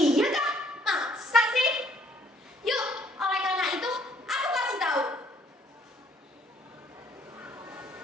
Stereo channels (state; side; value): normal; both; correlation 0.63